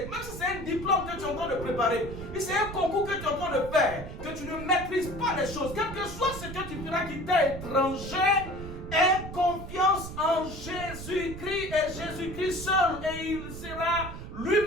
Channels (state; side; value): noise; right; rumble, 10 dB below the sound